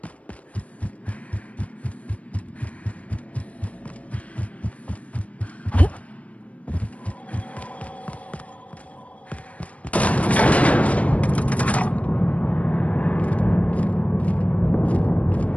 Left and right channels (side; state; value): right; late; 0.066 ms